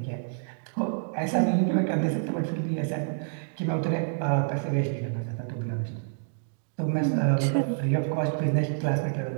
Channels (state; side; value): silent; left; digital silence